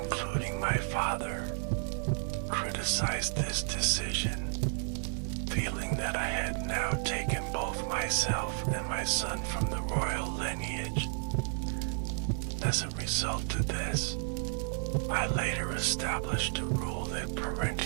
my father, criticized this decision, feeling that I had now taken both myself and my son from the royal lineage. As a result of this, I later established a rule that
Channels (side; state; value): left; silent; 56 dB below the other